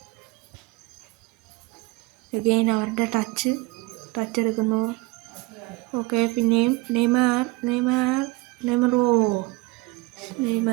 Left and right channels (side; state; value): left; quieter; 22.2 dB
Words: അഗെയിൻ അവരുടെ ടച്ച് എടുക്കുന്നു. ഓക്കെ, പിന്നെയും Neymar